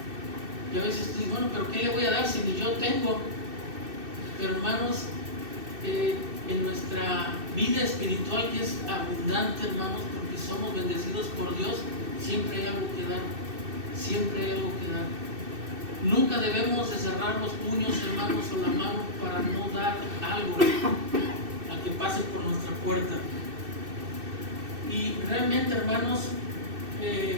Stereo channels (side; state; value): left; late; 2.6 ms